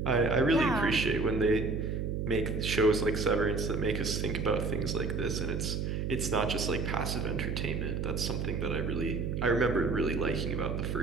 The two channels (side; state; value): right; noise; hum, 1 dB below the sound